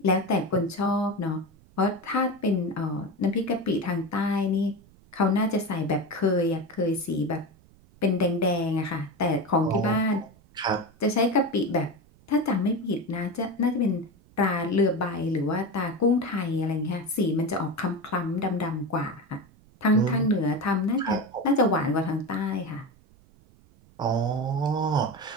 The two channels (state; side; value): noise; right; rumble, 28 dB below the sound